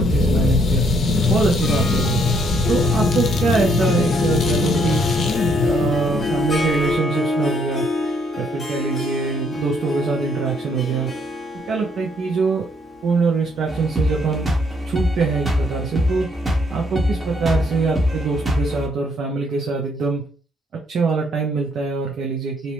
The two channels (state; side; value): normal; both; correlation 0.69